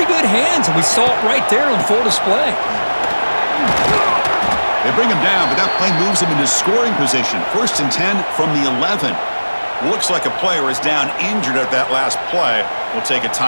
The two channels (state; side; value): inverted; both; correlation -1.00